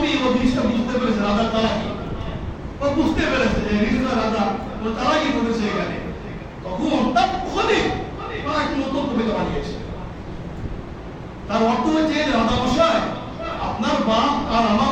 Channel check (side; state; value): both; identical; correlation 1.00